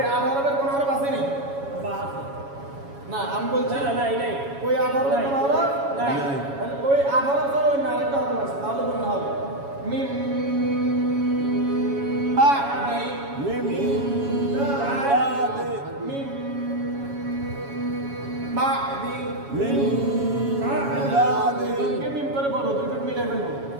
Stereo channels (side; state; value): left; late; 7.2 ms